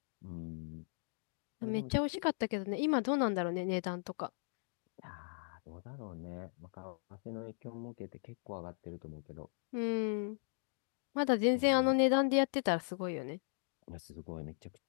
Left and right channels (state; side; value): silent; right; digital silence